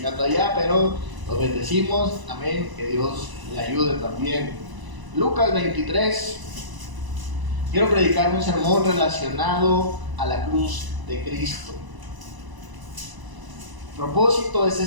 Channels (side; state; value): left; late; 1.0 ms